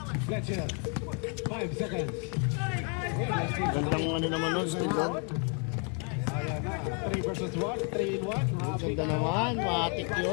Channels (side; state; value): right; quieter; 38.6 dB